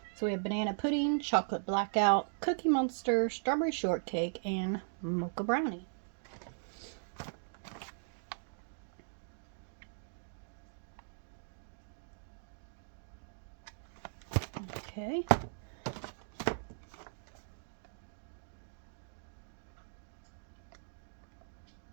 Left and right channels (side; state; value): left; silent; digital silence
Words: So we have banana pudding, chocolate blackout, cookie monster, strawberry shortcake, and mocha brownie. Okay.